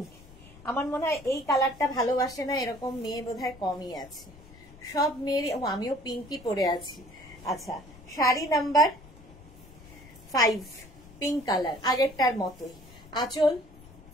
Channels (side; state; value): left; noise; rumble, 21 dB below the sound